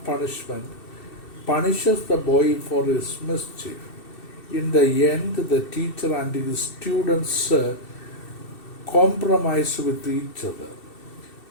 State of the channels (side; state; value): right; late; 2.7 ms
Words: Punishment, punishes the boy for his mischief. In the end, the teacher and his students compromise with each other.